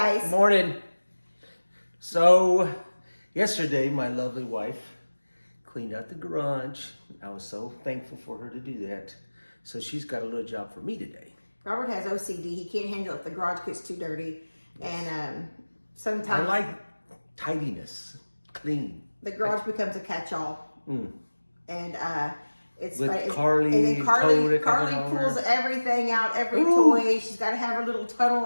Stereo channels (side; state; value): both; inverted; correlation -1.00